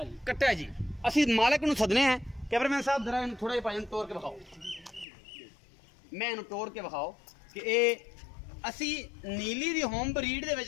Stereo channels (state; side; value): drops out; right; at 5.1 s